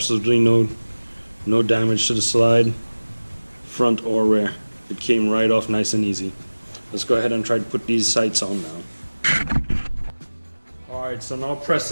no damage to the slide, front or rear. It came right off nice and easy. Let's go ahead and try to put these sights on now. Alright, so now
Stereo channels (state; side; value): inverted; both; correlation -1.00